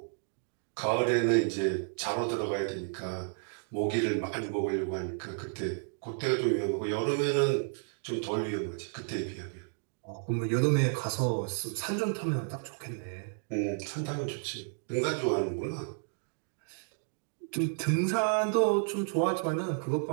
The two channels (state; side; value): silent; left; 56 dB below the other